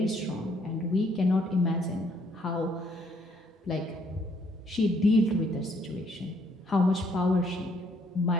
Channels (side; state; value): both; normal; correlation 0.68